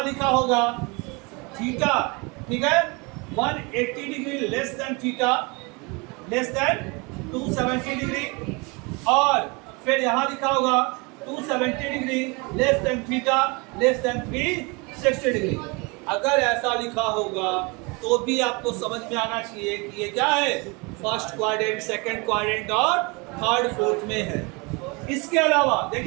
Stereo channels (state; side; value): quieter; left; 28.5 dB